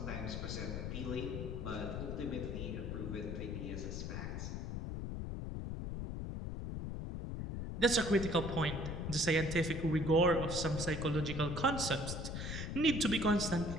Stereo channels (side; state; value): left; noise; rumble, 4 dB below the sound